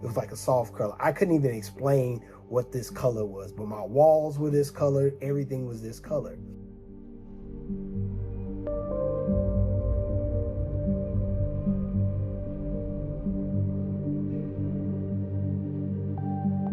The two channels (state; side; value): identical; both; correlation 1.00